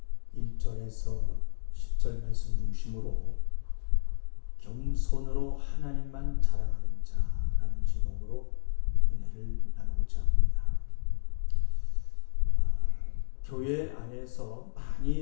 1절에서 10절 말씀 중심으로 겸손으로 하나님만 자랑하는 자라는 제목으로 은혜를 나누고자 합니다. 교회 안에서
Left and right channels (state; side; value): silent; right; 58 dB below the other